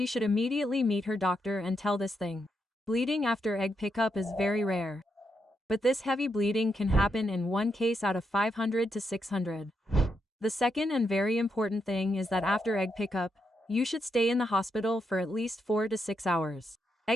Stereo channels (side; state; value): both; normal; correlation 0.81